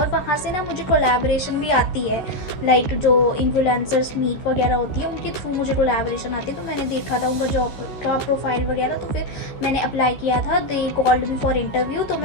वहाँ से ना मुझे कोलैबोरेशन भी आती है, लाइक जो इन्फ्लुएंसर्स मीट वगैरह होती है उनके थ्रू मुझे कोलैबोरेशन आती है। तो मैंने देखा था उनका जॉब का प्रोफाइल वगैरह, तो फिर मैंने अप्लाई किया था। They called me for interview, तो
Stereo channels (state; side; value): late; right; 13 ms